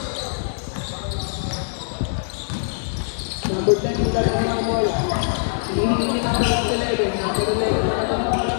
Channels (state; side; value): silent; right; digital silence